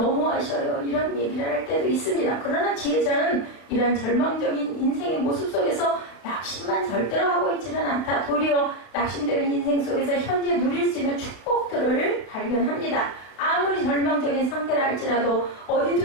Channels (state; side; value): late; right; 32 ms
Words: 이런 얘기를 할 때도 있습니다. 그러나 지혜자는 이러한 절망적인 인생의 모습 속에서 낙심만 절대로 하고 있지는 않다. 도리어 낙심되는 인생 속에서 현재 누릴 수 있는 축복들을 발견합니다. 아무리 절망적인 상태라 할지라도